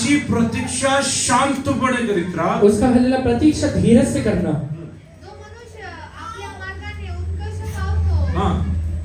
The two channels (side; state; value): both; identical; correlation 1.00